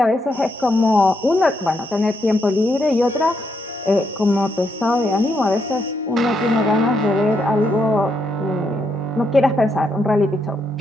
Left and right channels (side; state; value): both; normal; correlation 0.78